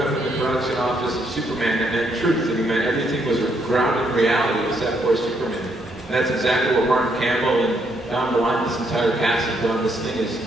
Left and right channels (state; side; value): normal; both; correlation 0.73